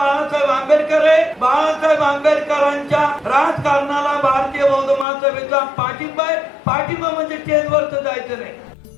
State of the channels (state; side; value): drops out; right; at 5.1 s